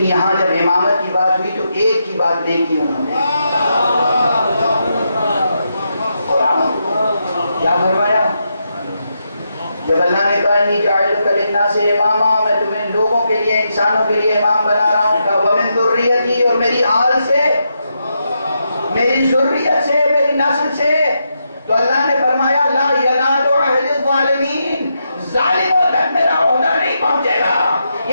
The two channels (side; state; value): both; inverted; correlation -0.83